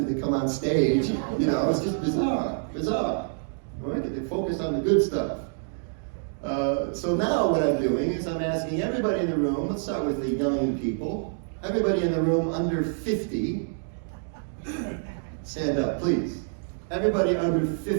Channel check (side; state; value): left; silent; digital silence